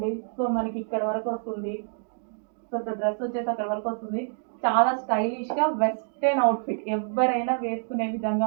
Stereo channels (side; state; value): left; silent; digital silence